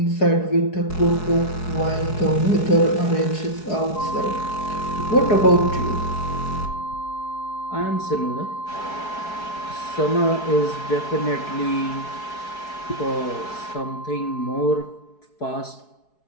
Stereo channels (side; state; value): right; late; 4.7 ms